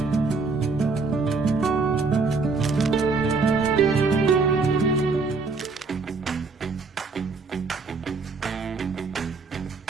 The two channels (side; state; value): left; quieter; 4.2 dB